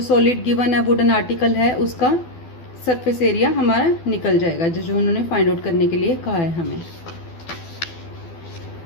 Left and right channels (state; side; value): late; right; 12 ms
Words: सॉलिड गिवन है वुडन आर्टिकल है उसका सरफेस एरिया हमारा निकल जाएगा, जो उन्होंने फाइंड आउट करने के लिए कहा है हमें।